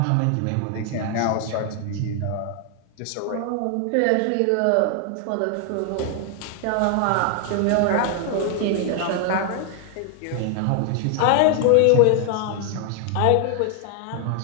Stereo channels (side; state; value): both; different; correlation 0.00